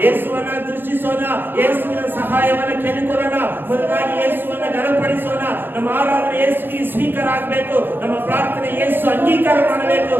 ಯೇಸುವನ್ನ ದೃಷ್ಟಿಸೋಣ, ಯೇಸುವಿನ ಸಹಾಯವನ್ನ ಕೇಳಿಕೊಳ್ಳೋಣ. ಮೊದಲಾಗಿ ಯೇಸುವನ್ನ ಘನಪಡಿಸೋಣ. ನಮ್ಮ ಆರಾಧನೆ ಯೇಸುವಿಗೆ ಸ್ವೀಕಾರ ಆಗಬೇಕು. ನಮ್ಮ ಪ್ರಾರ್ಥನೆ ಯೇಸು ಅಂಗೀಕಾರ ಮಾಡಬೇಕು.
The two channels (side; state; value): left; late; 0.098 ms